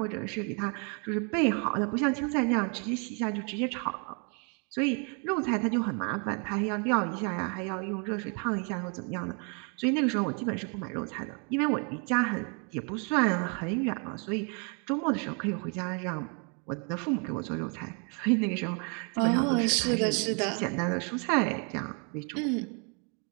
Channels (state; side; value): quieter; left; 36.9 dB